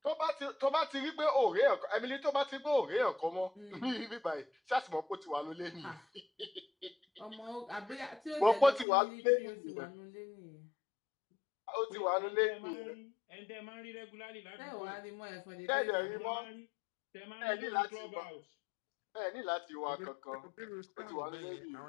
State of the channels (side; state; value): right; drops out; at 8.8 s